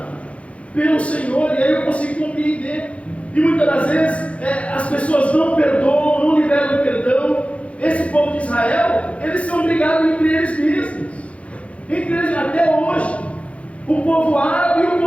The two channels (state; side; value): late; right; 0.063 ms